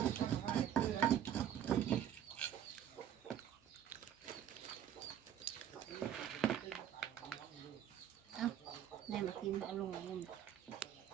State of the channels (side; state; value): left; quieter; 10.0 dB